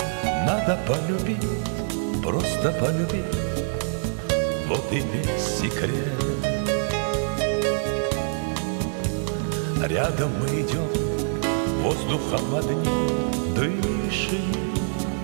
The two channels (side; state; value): left; silent; digital silence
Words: Надо полюбить, просто полюбить, вот и весь секрет. Рядом мы идем, воздухом одним дышим,